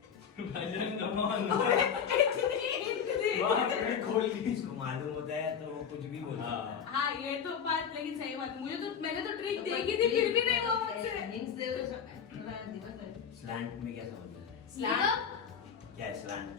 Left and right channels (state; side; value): quieter; right; 7.3 dB